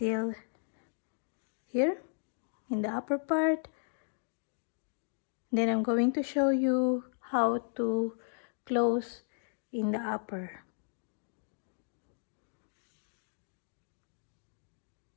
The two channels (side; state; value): right; silent; digital silence